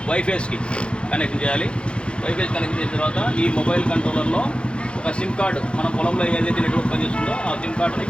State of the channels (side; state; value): right; late; 0.057 ms